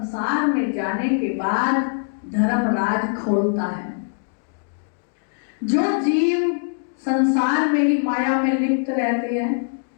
में जाने के बाद धर्मराज खोलता है। जो जीव संसार में ही माया में लिप्त रहते हैं,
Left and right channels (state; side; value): silent; right; digital silence